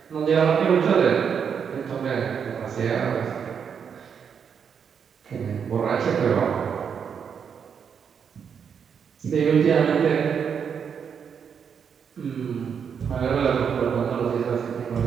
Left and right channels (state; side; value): quieter; left; 7.1 dB